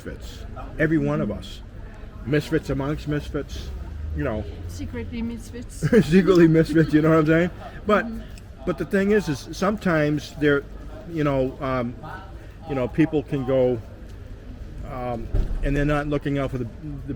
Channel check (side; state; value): both; identical; correlation 1.00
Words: every one of us, misfits amongst misfits, Secretly misfits. secretly misfits, you know what I'm saying? But the thing is sometimes they're people can go and they're not looking out for the